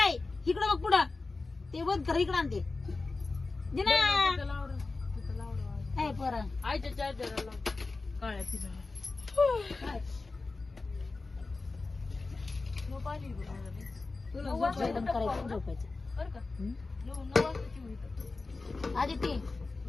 इकडं बघ पुढं ते बघ कर इकडं आणते दे ना काय पोरा आईच्या चार्जरला काळ्या तिला जेवण करायचं झोपायचं बरं का 9 वाजताची होईल आधी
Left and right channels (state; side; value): quieter; right; 3.7 dB